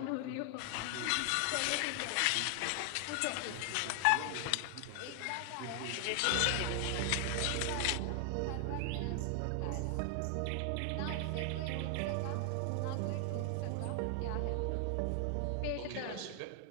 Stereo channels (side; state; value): both; different; correlation 0.00